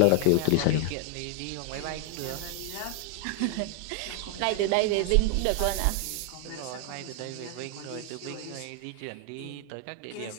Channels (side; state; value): both; different; correlation 0.00